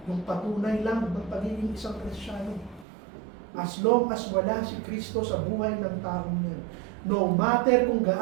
yung patunay lang ng pagiging isang Kristiyano. As long as wala si Kristo sa buhay ng taong yan, no matter kung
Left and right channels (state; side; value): drops out; left; at 2.9 s